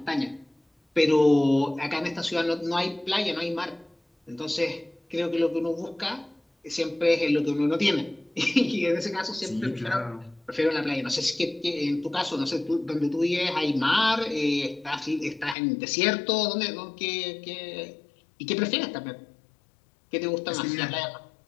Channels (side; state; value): right; drops out; at 15.6 s